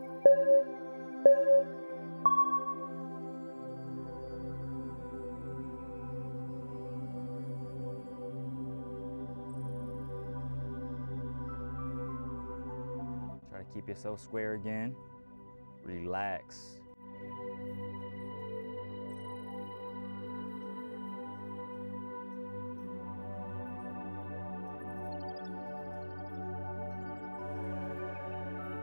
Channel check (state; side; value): inverted; both; correlation -1.00